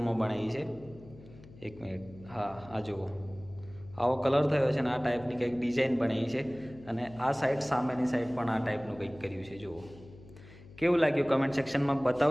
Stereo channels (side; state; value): left; noise; hum, 20 dB below the sound